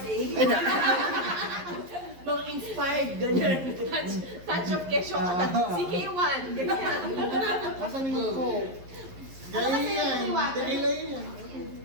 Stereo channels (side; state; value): left; late; 11 ms